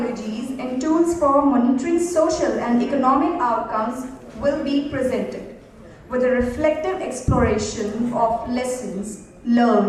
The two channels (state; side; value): identical; both; correlation 1.00